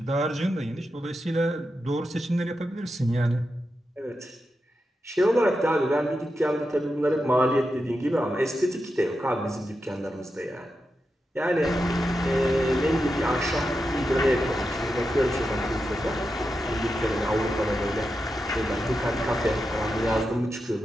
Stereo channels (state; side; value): normal; both; correlation 0.88